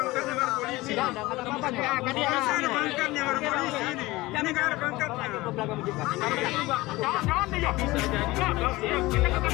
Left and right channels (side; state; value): right; quieter; 20.0 dB